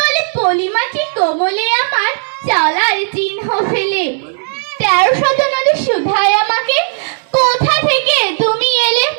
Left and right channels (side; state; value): left; silent; digital silence